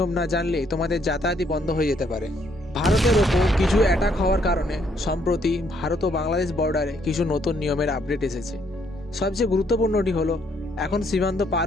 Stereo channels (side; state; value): both; normal; correlation 0.70